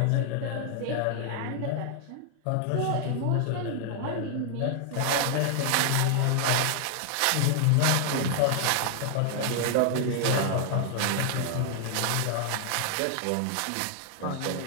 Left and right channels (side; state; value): both; different; correlation 0.00